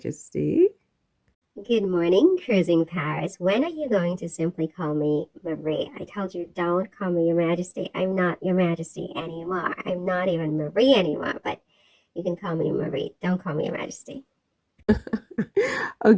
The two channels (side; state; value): both; identical; correlation 1.00